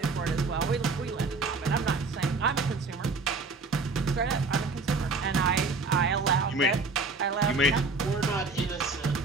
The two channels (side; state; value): left; quieter; 3.9 dB